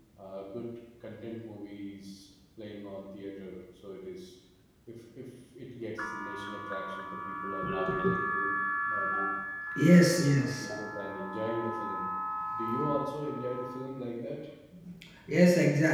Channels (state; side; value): identical; both; correlation 1.00